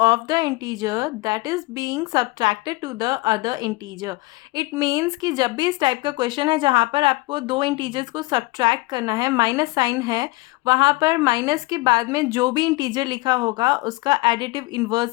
of the integer that is being subtracted to the other integer. It means कि जब भी इस type का question है जहाँ पर आपको दो इंटीजर्स को सब्ट्रैक्ट करना है, माइनस साइन है, वहाँ पर माइनस के बाद में जो भी इंटीजर लिखा होगा उसका एडिटिव इन्वर्स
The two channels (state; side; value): quieter; right; 22.3 dB